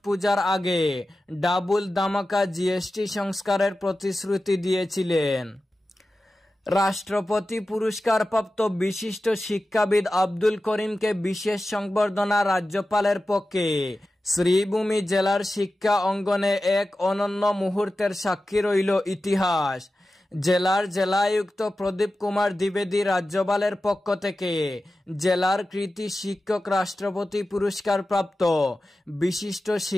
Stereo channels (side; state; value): both; normal; correlation 0.94